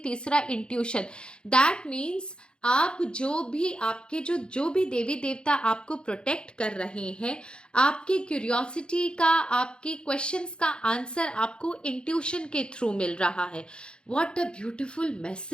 इंट्यूशन। दैट मीन्स आप जो भी देवी देवता आपको प्रोटेक्ट कर रहे हैं, आपकी क्यूरियोसिटी का, आपके क्वेश्चंस का आंसर आपको इंट्यूशन के थ्रू मिल रहा है। व्हाट अ ब्यूटीफुल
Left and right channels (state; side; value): late; right; 0.052 ms